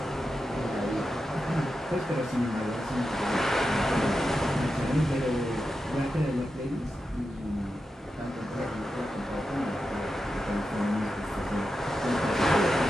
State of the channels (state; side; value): normal; both; correlation 0.90